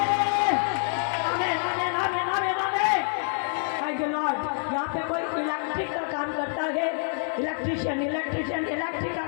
आमीन, आमीन, आमीन, आमीन, आमीन। Thank you Lord. यहाँ पे कोई इलेक्ट्रिक का काम करता है, इलेक्ट्रिशियन, इलेक्ट्रिशियन इलेक्ट्रिक का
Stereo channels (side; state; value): right; silent; 60 dB below the other